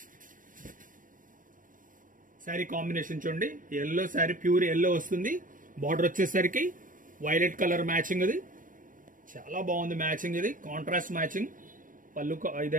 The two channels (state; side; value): late; left; 0.39 ms